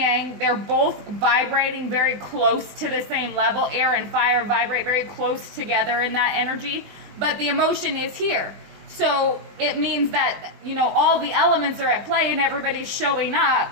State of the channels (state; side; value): late; left; 20 ms